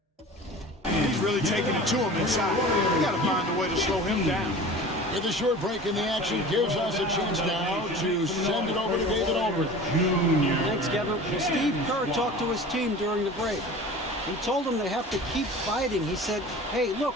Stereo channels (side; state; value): both; normal; correlation 0.39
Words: He's really taking it to him inside. We got to find a way to slow him down. With a short break in the action, gives us a chance now to send it over to David Aldridge. Thanks, Kevin. Well, Steve Kerr talked to his team during the break. He told them they have to keep fighting. He said, hey, look,